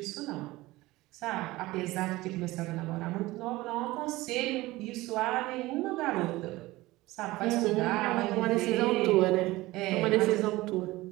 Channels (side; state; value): left; quieter; 19.1 dB